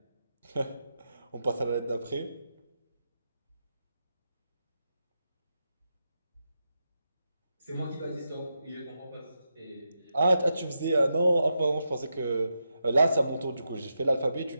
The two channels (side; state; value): both; inverted; correlation -0.87